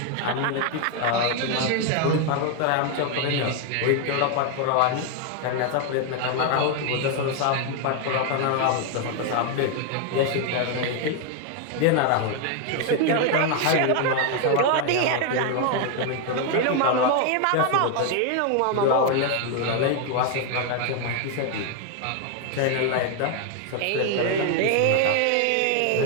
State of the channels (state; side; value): different; both; correlation 0.01